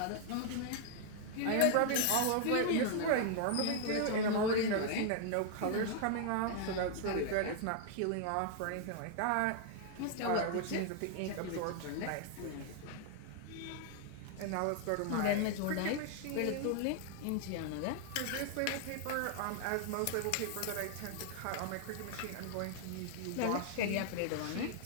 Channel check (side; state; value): both; different; correlation 0.00